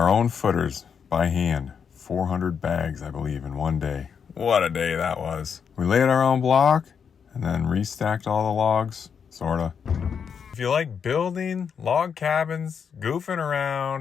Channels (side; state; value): right; quieter; 6.9 dB